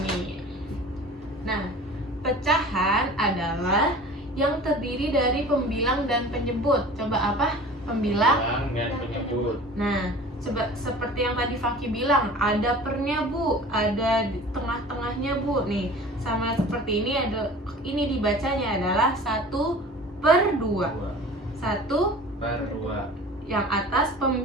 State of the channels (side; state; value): both; normal; correlation 0.41